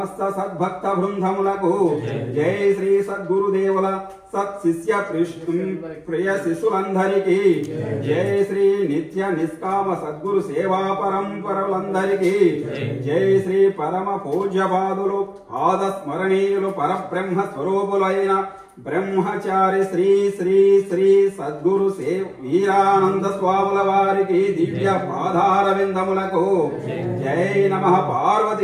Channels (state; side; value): identical; both; correlation 1.00